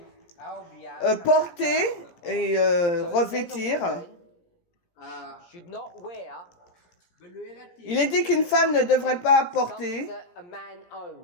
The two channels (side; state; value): right; late; 17 ms